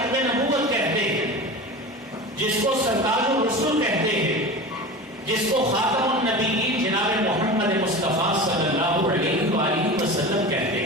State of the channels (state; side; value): normal; both; correlation 0.31